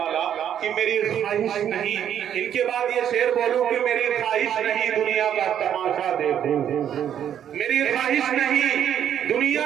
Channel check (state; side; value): quieter; left; 9.7 dB